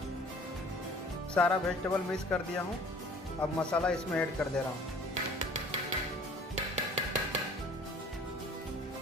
सारा वेजिटेबल मिक्स कर दिया हूँ। अब मसाला इसमें ऐड कर दे रहा हूँ।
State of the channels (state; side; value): normal; both; correlation 0.51